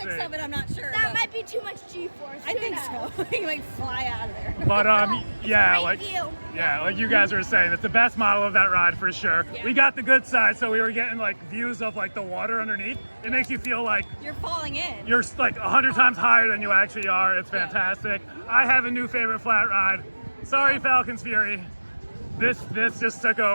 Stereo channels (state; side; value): inverted; both; correlation -1.00